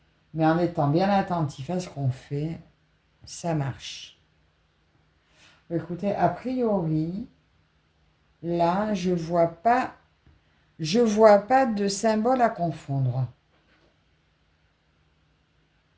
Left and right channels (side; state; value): both; identical; correlation 1.00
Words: Mais en étant bien attentif à ce qu'on fait, ça marche. Écoutez, a priori, là, je vois pas de symbole à confondre.